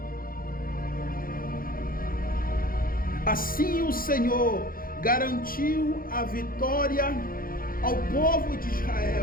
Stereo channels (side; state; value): right; late; 0.42 ms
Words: Assim o Senhor garantiu a vitória ao povo de